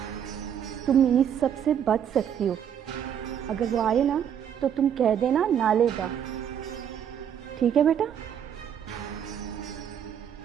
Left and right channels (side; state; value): left; quieter; 8.9 dB